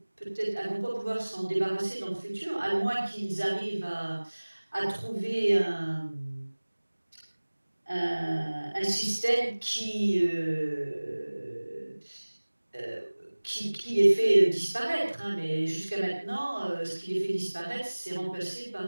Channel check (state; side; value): inverted; both; correlation -1.00